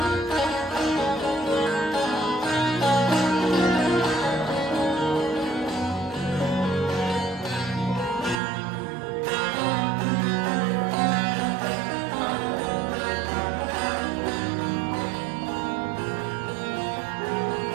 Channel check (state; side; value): drops out; left; at 8.3 s